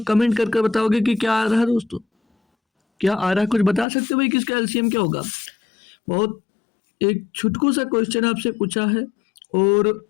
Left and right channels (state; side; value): drops out; right; at 3.9 s